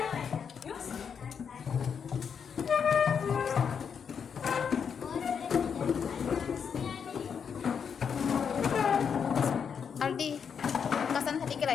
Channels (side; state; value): right; quieter; 6.9 dB